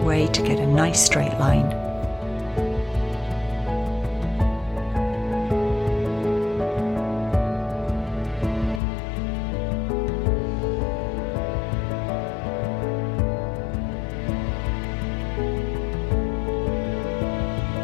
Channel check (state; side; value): drops out; right; at 8.8 s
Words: way to get a nice straight line.